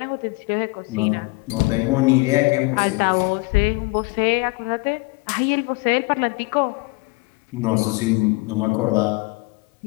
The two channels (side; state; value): right; quieter; 26.7 dB